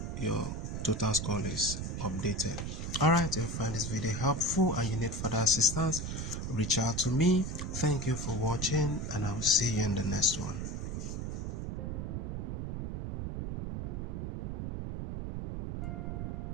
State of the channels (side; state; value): right; noise; rumble, 4 dB below the sound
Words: your total score is updated. Alright, if you find this video helpful and you need further assistance, reach out to me. Thank you for watching and I'll see you in the next one.